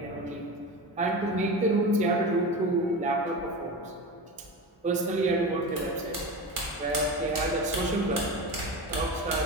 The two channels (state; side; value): normal; both; correlation 0.26